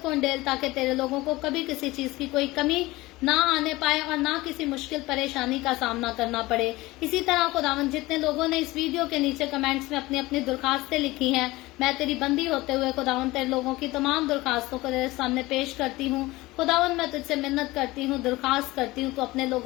को डेल, ताकि तेरे लोगों को कभी किसी चीज की कोई कमी ना आने पाए और ना किसी मुश्किल परेशानी का सामना करना पड़े। इसी तरह खुदावंद जितने लोगों ने इस वीडियो के नीचे कमेंट्स में अपनी अपनी दरखास्तें लिखी हैं, मैं तेरी बंदी होते हुए खुदावंद तेरे लोगों की तमाम दरखास्तों को तेरे सामने पेश करती हूँ। खुदावंद मैं तुझसे मिन्नत करती हूँ, दरखास्त करती हूँ तो अपने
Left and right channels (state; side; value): quieter; right; 19.9 dB